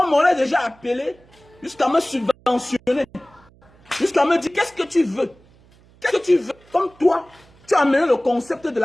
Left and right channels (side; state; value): right; noise; hum, 29 dB below the sound